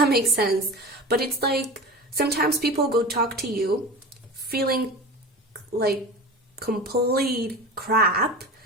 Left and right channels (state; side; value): normal; both; correlation 0.32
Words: makes sense, but it's like sometimes people go talk to you feeling like complete crap,